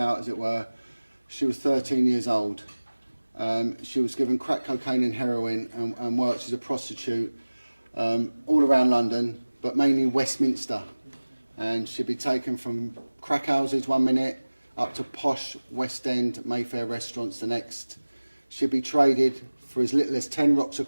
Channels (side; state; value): both; inverted; correlation -1.00